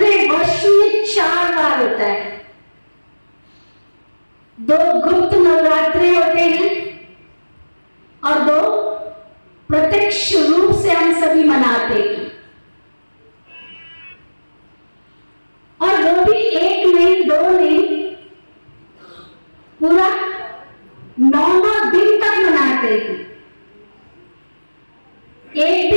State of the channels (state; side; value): inverted; both; correlation -1.00